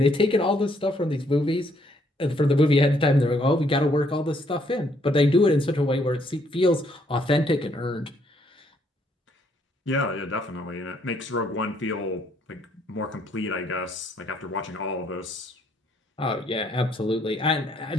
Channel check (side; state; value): both; normal; correlation 0.69